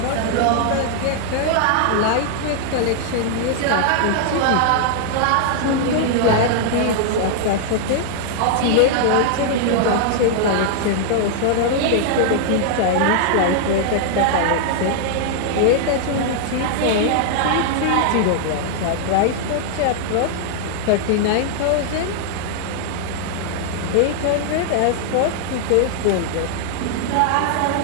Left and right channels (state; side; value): different; both; correlation -0.01